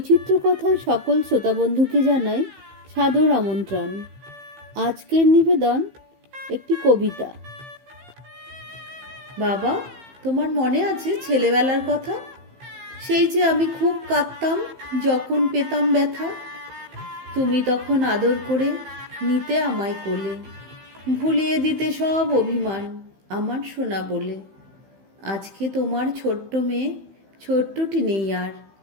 কথায় সকল শ্রোতাবন্ধুকে জানাই সাদর আমন্ত্রণ। আজকের নিবেদন একটি কবিতা। বাবা, তোমার মনে আছে ছেলেবেলার কথা? সেই যে আমি খুব কাঁদতাম যখন পেতাম ব্যথা। তুমি তখন আদর করে নিতে আমায় কোলে, ভুলিয়ে দিতে সব অভিমান আমার সোনা বলে। আজকে তোমার ছোট্ট মেয়ে ছোট্টটি নেই আর,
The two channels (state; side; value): late; left; 15 ms